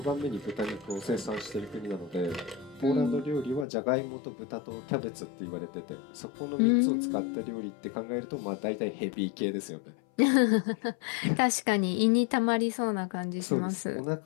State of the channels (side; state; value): right; drops out; at 3.7 s